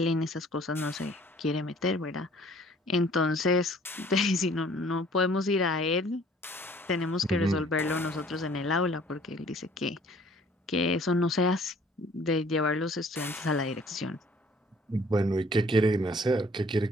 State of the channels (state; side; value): normal; both; correlation 0.56